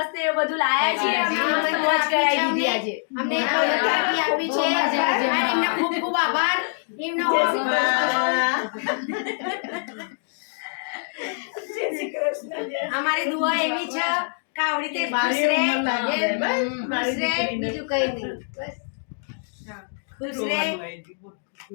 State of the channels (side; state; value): right; silent; 61 dB below the other